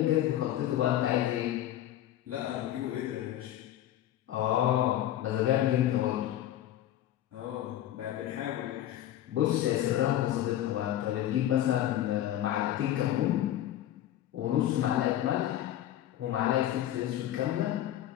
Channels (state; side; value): quieter; right; 12.6 dB